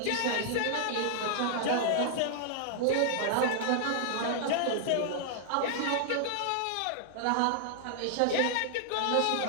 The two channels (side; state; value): both; different; correlation -0.01